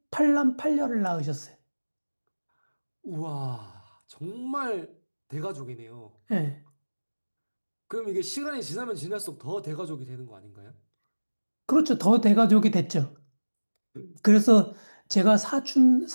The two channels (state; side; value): inverted; both; correlation -1.00